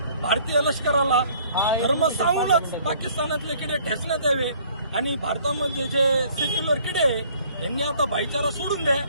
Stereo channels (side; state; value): both; inverted; correlation -0.57